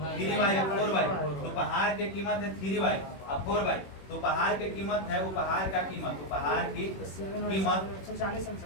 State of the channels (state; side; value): late; right; 21 ms